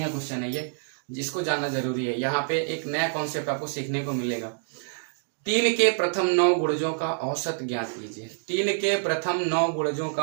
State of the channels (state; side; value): silent; left; digital silence